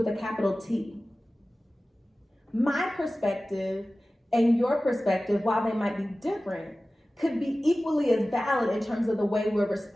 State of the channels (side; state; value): both; normal; correlation 0.96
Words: a capital T. My perspective and your perspective, while they might be different, could be equally as valid in terms of the way we're